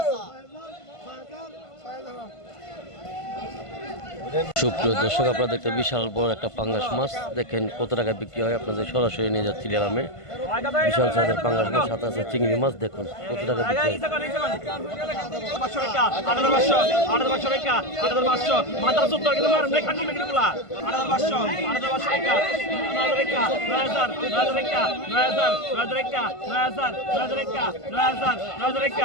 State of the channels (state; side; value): late; right; 1.5 ms